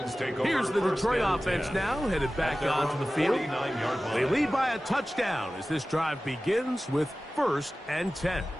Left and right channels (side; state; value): both; normal; correlation 0.96